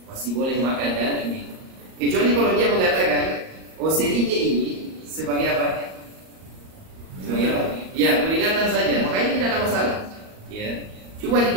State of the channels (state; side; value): late; left; 38 ms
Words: Kecuali kalau dia mengatakan, oh, sirine ini sebagai apa? Ya, peringatan saja. Makanya tidak ada masalah. Ya. Cuma di